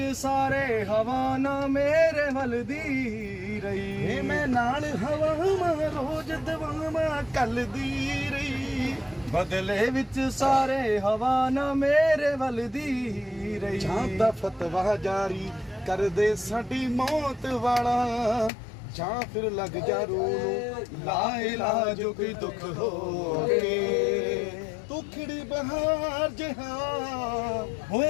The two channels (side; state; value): right; drops out; at 18.5 s